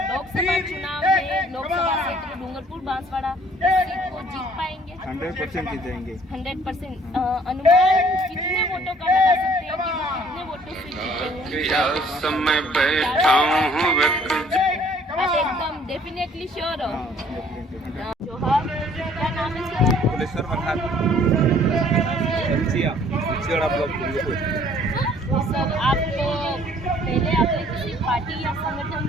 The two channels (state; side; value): normal; both; correlation 0.58